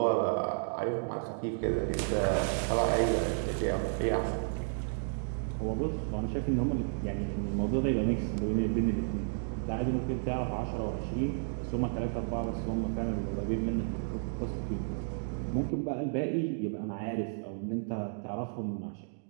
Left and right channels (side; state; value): left; silent; digital silence